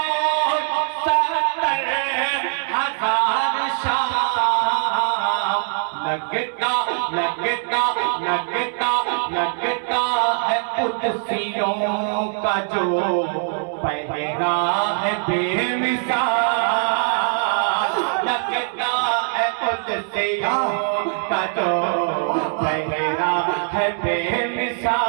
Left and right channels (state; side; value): silent; left; digital silence